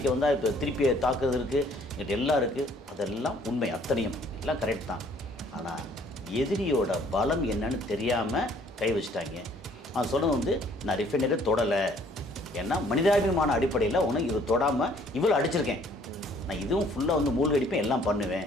வந்தால் இப்போ திருப்பி தாக்குறது இருக்குது, என்கிட்ட எல்லாம் இருக்குது. அதெல்லாம் உண்மை, அத்தனையும் எல்லாம் கரெக்ட் தான். ஆனால் எதிரியோட பலம் என்னன்னு தெரியாமல் கை வச்சுட்டாங்க. அவன் சொன்னது வந்து நான் ரிஃபைனரை தொடலை, ஏன்னா மனிதாபிமான அடிப்படையில் உனக்கு இது தொடாமல் இவ்வளோ அடிச்சிருக்கேன், நான் இதுவும் ஃபுல்லாக வந்து மூழ்கடிப்பேன், எல்லாம்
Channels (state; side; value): normal; both; correlation 0.60